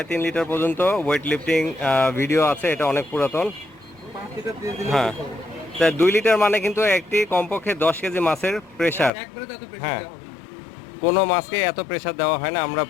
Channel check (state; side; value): drops out; right; at 9.1 s